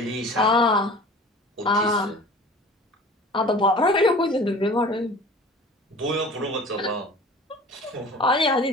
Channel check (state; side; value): normal; both; correlation 0.42